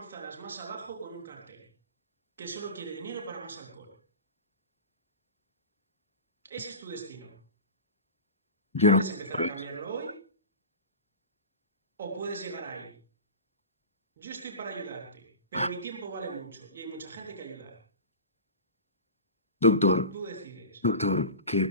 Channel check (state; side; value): inverted; both; correlation -0.31